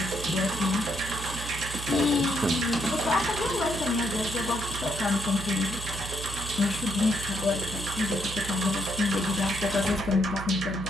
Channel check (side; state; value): right; noise; hum, 9 dB below the sound